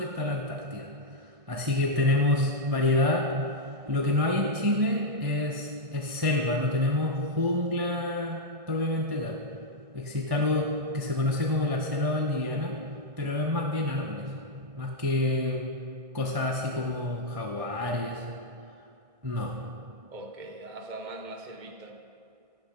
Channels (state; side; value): late; left; 1.6 ms